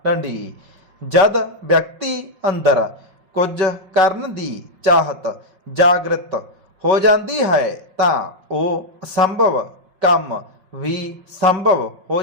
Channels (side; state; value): left; late; 5.4 ms